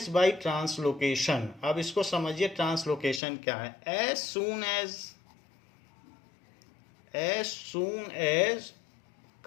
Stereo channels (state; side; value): drops out; right; at 3.2 s